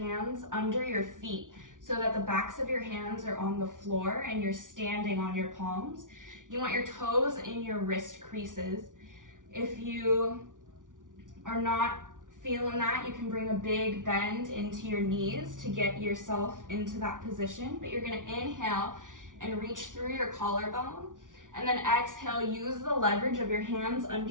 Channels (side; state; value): left; late; 0.88 ms